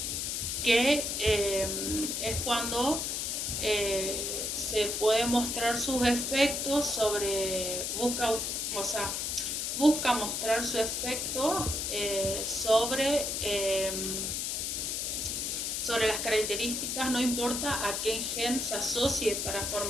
que es cuando se puede mostrar sus efectos busca mostrar su efecto sobre las características, no importa a qué gen se asocie para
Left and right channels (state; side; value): noise; left; hiss, 1 dB below the sound